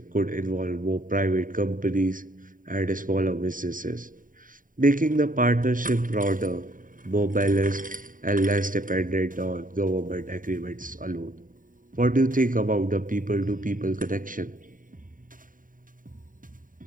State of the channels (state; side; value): late; left; 0.39 ms